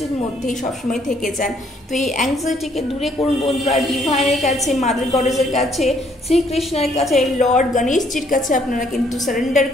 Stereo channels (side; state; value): both; normal; correlation 0.66